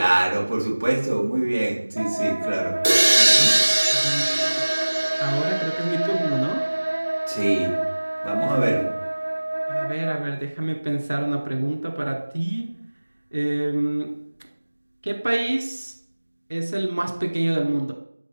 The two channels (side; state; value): both; inverted; correlation -1.00